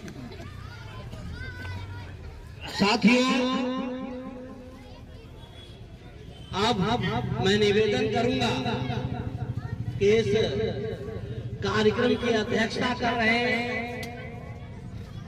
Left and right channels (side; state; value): both; identical; correlation 1.00